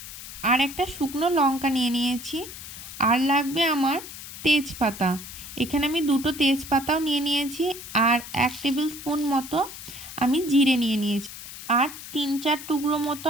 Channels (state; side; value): noise; left; hiss, 12 dB below the sound